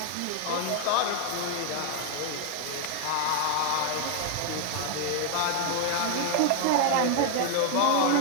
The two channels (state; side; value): different; both; correlation 0.00